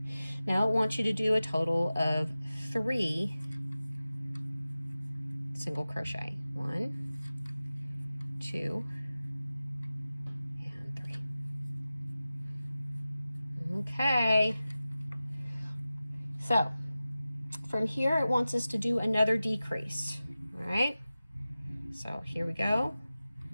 Now it wants you to do a total of 3 single crochet. 1, 2, and 3. Okay. So from here, it wants us to do another decrease. All right. So here we go.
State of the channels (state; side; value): inverted; both; correlation -0.95